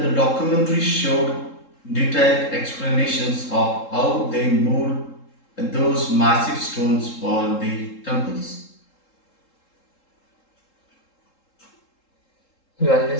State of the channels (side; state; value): right; late; 3.7 ms